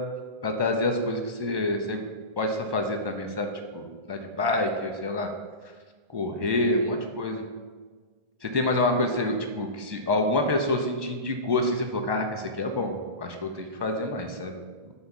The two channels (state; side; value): late; left; 1.1 ms